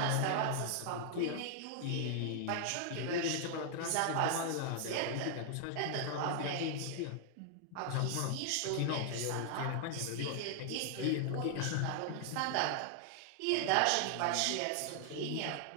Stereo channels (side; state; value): both; different; correlation 0.00